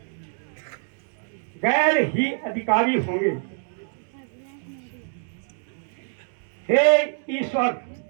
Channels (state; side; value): silent; left; 61 dB below the other